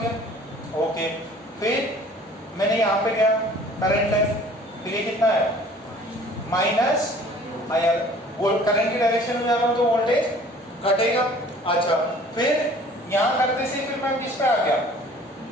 ओके, फिर मैंने यहाँ पे गया, करंट है, फिर ये कितना है? माइनस आया, करंट की डायरेक्शन में जा रहा हूँ तो वोल्टेज घटेगा। अच्छा, फिर यहाँ करते से फिर मैं किस पे आ गया?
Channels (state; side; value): normal; both; correlation 0.50